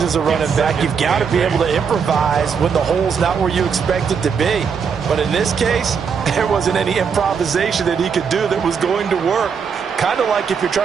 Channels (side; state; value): left; quieter; 6.4 dB